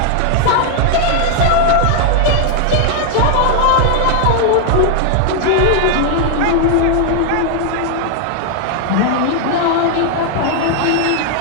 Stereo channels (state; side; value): different; both; correlation 0.00